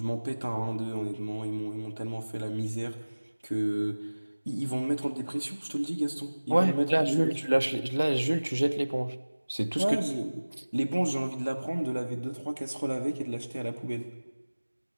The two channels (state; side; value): inverted; both; correlation -1.00